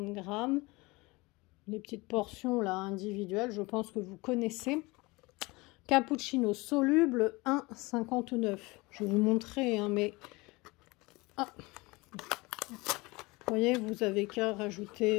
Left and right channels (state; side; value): quieter; right; 23.8 dB